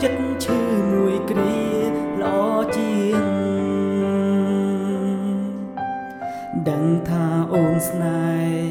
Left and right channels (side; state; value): both; identical; correlation 1.00